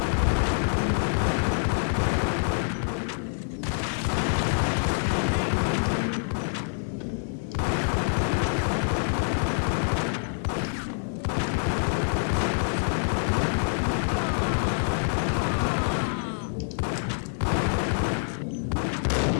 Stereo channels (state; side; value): silent; right; digital silence